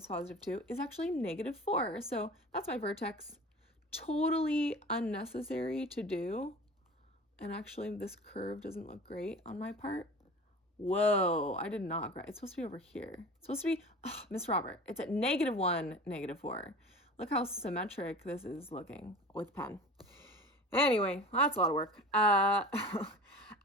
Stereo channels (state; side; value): normal; both; correlation 0.38